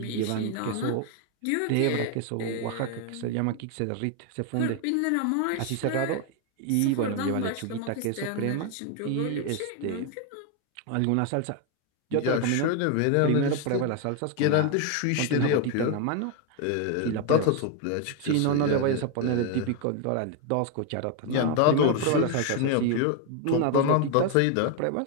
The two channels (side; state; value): both; different; correlation 0.01